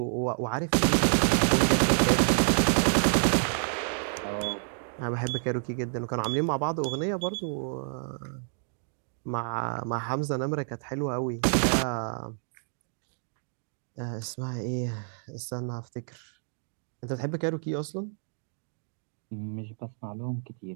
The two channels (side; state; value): left; silent; digital silence